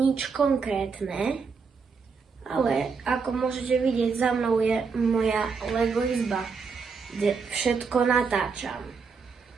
konkrétne, ale ako môžete vidieť, za mnou je moja Lego izba, kde všetko natáčam.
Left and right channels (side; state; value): left; quieter; 5.2 dB